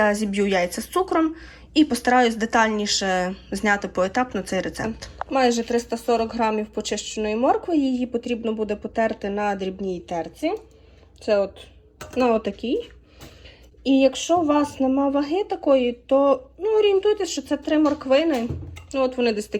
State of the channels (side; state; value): both; identical; correlation 1.00